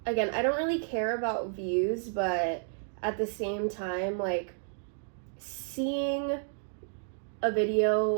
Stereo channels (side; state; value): left; silent; digital silence